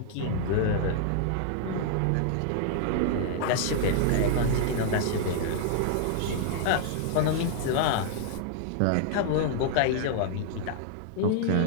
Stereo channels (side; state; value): both; different; correlation -0.01